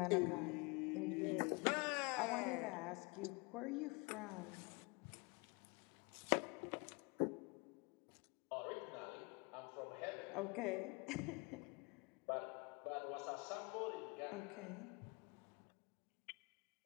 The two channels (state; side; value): quieter; right; 28.5 dB